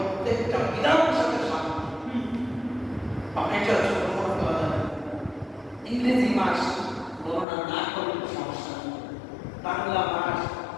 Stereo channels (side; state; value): right; drops out; at 7.5 s